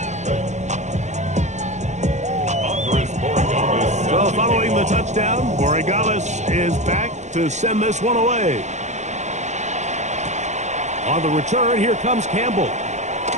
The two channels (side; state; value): left; late; 0.34 ms